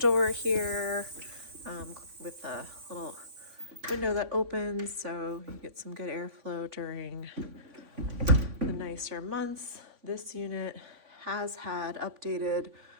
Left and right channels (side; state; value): left; late; 3.5 ms